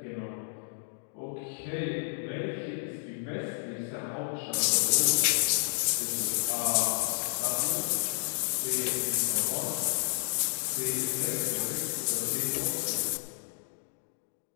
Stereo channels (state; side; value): silent; right; digital silence